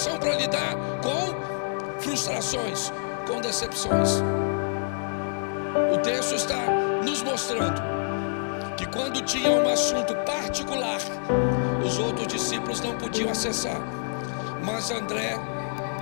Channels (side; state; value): right; silent; digital silence